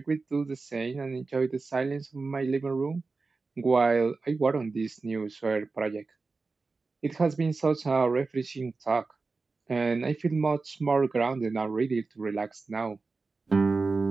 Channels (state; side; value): quieter; left; 4.0 dB